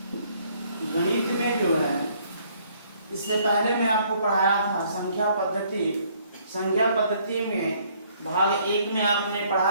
जो है, इससे पहले मैं आपको पढ़ाया था संख्या पद्धति। संख्या पद्धति में भाग 1 में आपने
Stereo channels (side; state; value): both; inverted; correlation -0.64